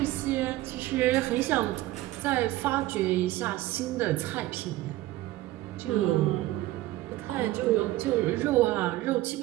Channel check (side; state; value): left; quieter; 16.7 dB